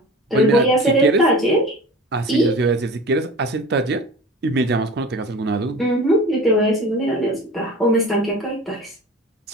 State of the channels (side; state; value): both; normal; correlation 0.37